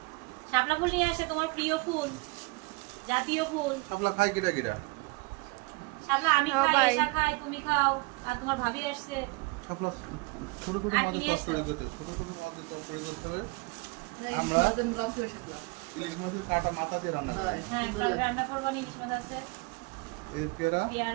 শাপলা ফুল নিয়ে আসে, তোমার প্রিয় ফুল, জাতীয় ফুল। শাপলা খাই কিটা কিটা? শাপলা আমি হ্যাঁ, খাই, ভাই। এসা খাই, তুমি খাও, আর তোমার ভাবি আসছে। শাপলা ছোট ছোট আর মাছ কি নিয়ে তরকারি এসছো? করতে হবে, ছোট ছোট মাছ তরকারি করতে হবে। আমরা ইলিশ মাছের কাটা মাথা দিয়ে রান্না করি। হ্যাঁ, কাল রান্না করবো, ইলিশ মাছ আছে, এই পেয়ারা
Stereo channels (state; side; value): quieter; left; 27.6 dB